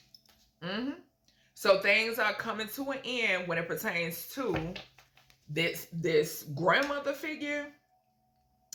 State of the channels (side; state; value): both; identical; correlation 1.00